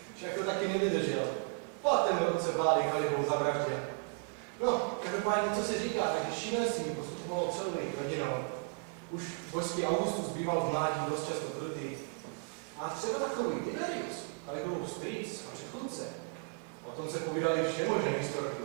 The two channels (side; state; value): left; quieter; 37.2 dB